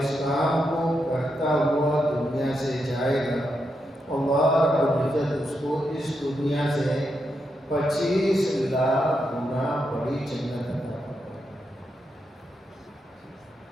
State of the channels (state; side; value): normal; both; correlation 0.84